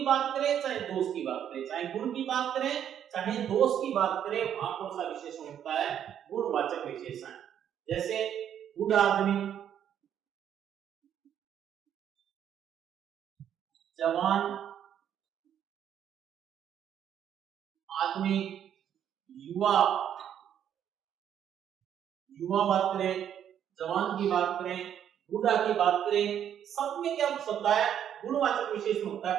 बात करें, चाहे दोष की बात करें, चाहे गुण की बात करें, चाहे दोष की बात करें, वहां कौन सा विशेषण होता है? गुणवाचक विशेषण। जैसे गुड आदमी, जवान आदमी, युवा बात करें, जवान की बात करें, बूढ़ा की बात करें, सब में क्या होता है? गुणवाचक विशेषण होता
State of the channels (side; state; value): left; quieter; 9.5 dB